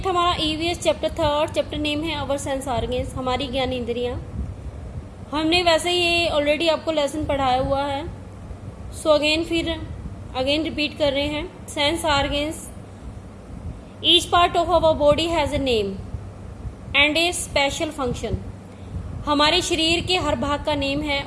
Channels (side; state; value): both; identical; correlation 1.00